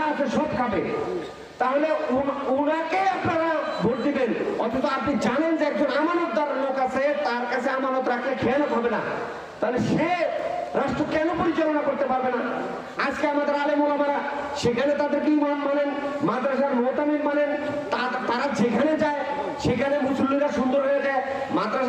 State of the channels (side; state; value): both; identical; correlation 1.00